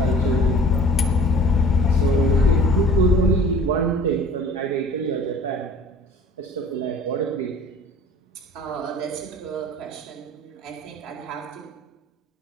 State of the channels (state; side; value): normal; both; correlation 0.47